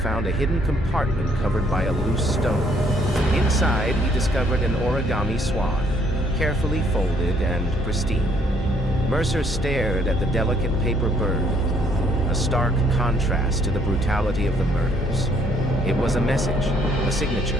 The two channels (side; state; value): both; normal; correlation 0.66